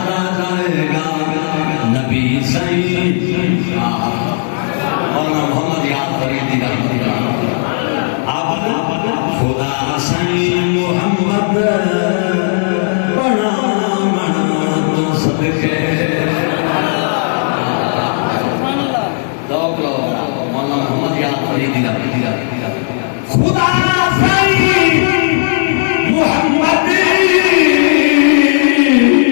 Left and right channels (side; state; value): right; silent; digital silence